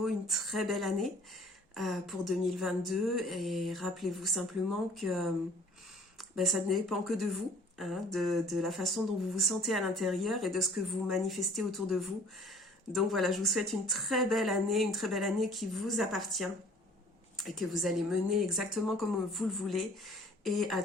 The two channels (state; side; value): normal; both; correlation 0.52